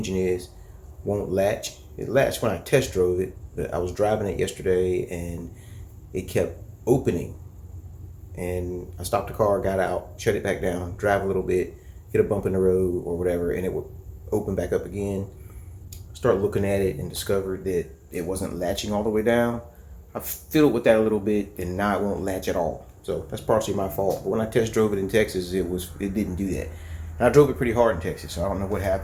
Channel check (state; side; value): identical; both; correlation 1.00